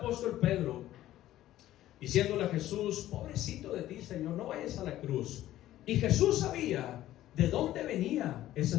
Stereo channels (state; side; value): quieter; right; 14.0 dB